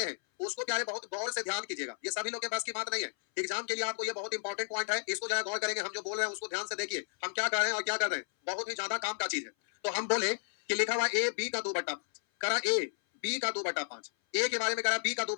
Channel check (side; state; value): right; silent; 56 dB below the other